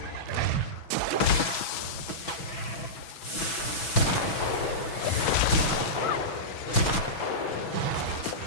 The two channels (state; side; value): late; right; 6.1 ms